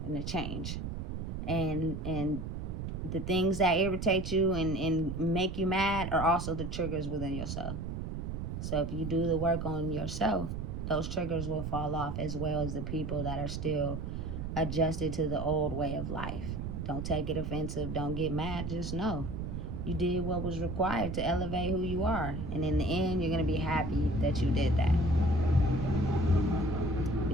and a change. And the things that irritate you and make you mad are also the triggers within yourself. So if you do the work on yourself, those triggers will fall off, as well as the people that are still adjusted to the old way of life. Don't take it offensive. Don't get mad. Just know you did what was required to elevate who you are. And in the end, you're going to be happy that you did that.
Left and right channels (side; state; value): right; noise; rumble, 4 dB below the sound